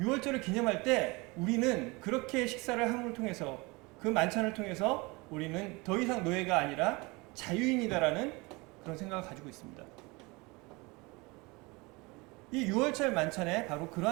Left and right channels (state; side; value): quieter; left; 25.3 dB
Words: 기념할 때 우리는 그렇게 식사를 함을 통해서 그 만찬을 통해서 우리는 더 이상 노예가 아니라 자유인이다라는 그런 생각을 가지고 있습니다. 이 6월절 만찬에 바로